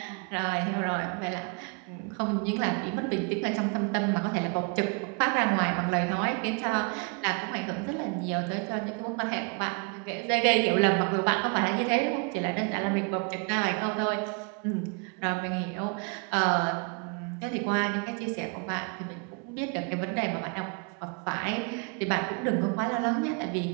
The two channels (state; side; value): quieter; left; 35.7 dB